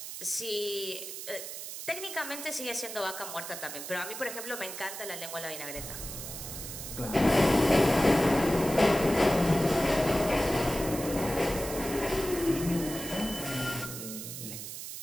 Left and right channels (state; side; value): noise; right; hiss, 9 dB below the sound